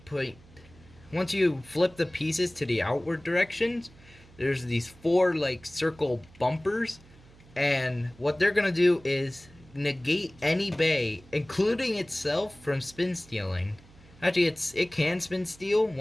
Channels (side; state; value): right; noise; hum, 24 dB below the sound